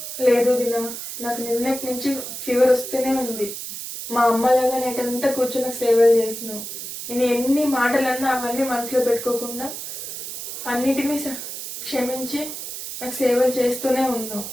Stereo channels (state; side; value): noise; right; hiss, 8 dB below the sound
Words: లేదు వదినా, నాకు నిన్నటి నుంచి ఫీవర్ వస్తూనే ఉంది. మా అమ్మలాగా నైట్ అంతా కూర్చొని నాకు సేవలు చేసినావు. నేను ఎన్ని మాటలన్నా అవన్నీ మనసులో పెట్టుకోకుండా అన్నిటినీ క్షమించి నాకు సేవలు చేస్తూనే ఉన్నావు.